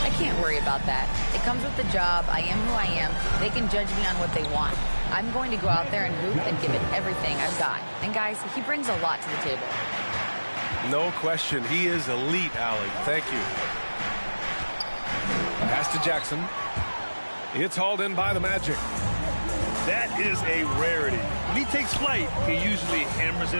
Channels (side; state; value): both; inverted; correlation -1.00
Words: "I can't worry about that. It comes with the job. I am who I am. They can judge me on what they want. I'm going to go out there and hoop and give it everything I've got." And guys, he brings a lot to the table. No question. He is elite, Allie. Thank you. Pass to Jackson. It's hauled in by the Magic. That is a rarity. When he takes flight, he usually hammers